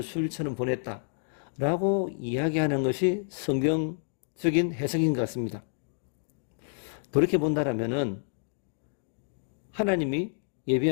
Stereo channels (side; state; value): right; silent; 58 dB below the other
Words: 수일처럼 보냈다라고 이야기하는 것이 성경적인 해석인 것 같습니다. 그렇게 본다라면은 하나님이